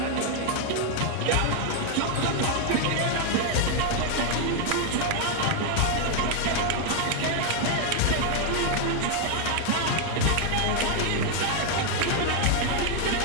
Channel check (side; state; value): both; different; correlation 0.00